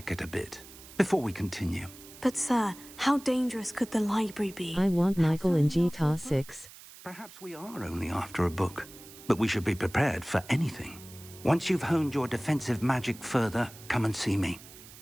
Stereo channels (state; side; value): noise; right; hiss, 18 dB below the sound